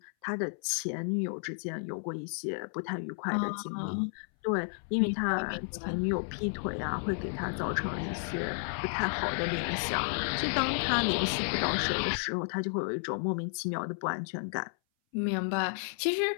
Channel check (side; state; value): right; silent; 56 dB below the other